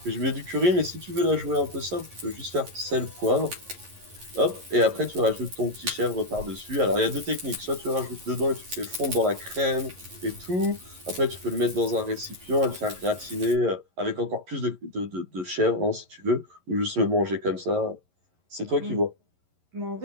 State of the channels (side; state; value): left; late; 11 ms